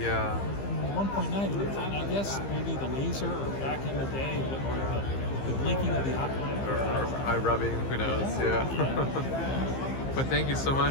1.9? And I guess maybe the laser, or back in the day, or the blinking of the eye. Or eye rubbing, who knows? Yeah. But thank you so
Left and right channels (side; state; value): right; late; 15 ms